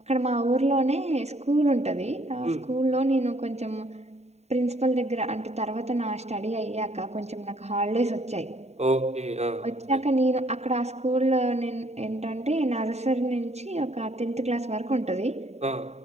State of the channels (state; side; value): late; left; 0.32 ms